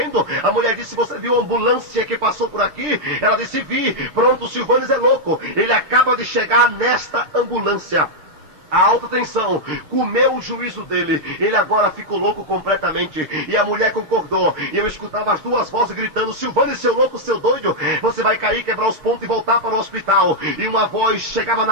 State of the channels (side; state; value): left; late; 6.6 ms